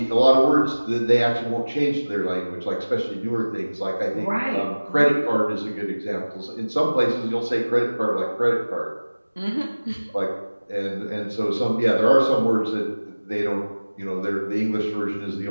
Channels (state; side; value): inverted; both; correlation -1.00